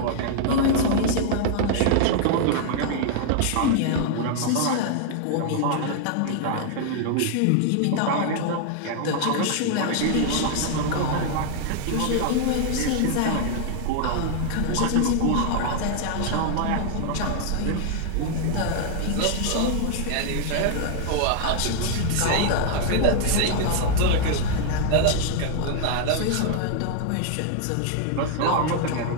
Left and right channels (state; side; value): different; both; correlation 0.00